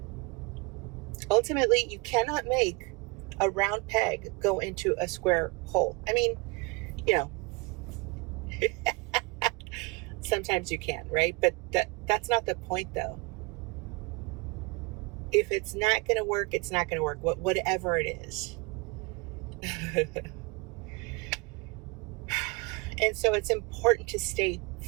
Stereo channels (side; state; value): left; quieter; 28.3 dB